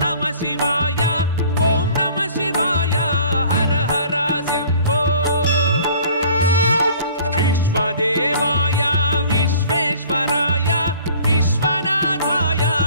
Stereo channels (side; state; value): both; inverted; correlation -0.51